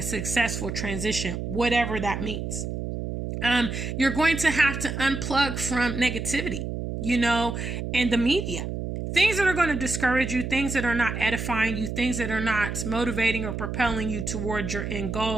successful transition, whatever that means. You're going to have to unplug from negativity, and the media. Things that are going to discourage you, things that are not edifying you, things that are not motivating or propelling you towards your end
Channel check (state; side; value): noise; right; hum, 4 dB below the sound